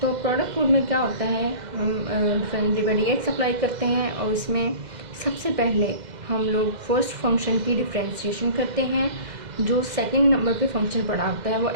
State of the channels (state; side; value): late; left; 2.0 ms